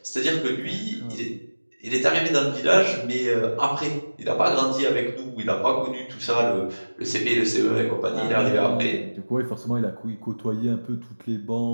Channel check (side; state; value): both; inverted; correlation -1.00